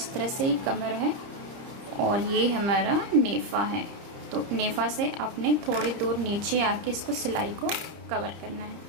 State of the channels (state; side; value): late; left; 30 ms